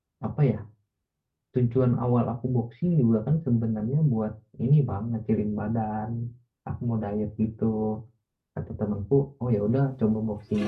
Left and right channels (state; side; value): identical; both; correlation 1.00